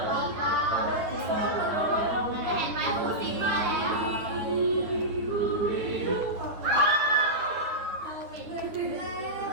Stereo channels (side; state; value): left; late; 9.4 ms